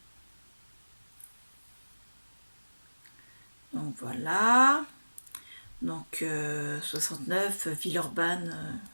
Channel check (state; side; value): inverted; both; correlation -1.00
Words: Donc, voilà. Donc, 69, Villeurbanne.